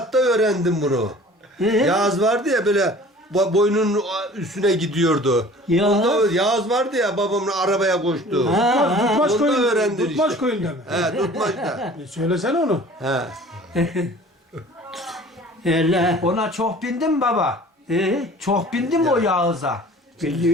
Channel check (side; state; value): both; normal; correlation 0.46